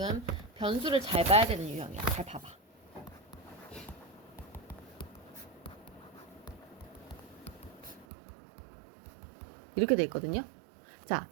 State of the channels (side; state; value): left; drops out; at 8.1 s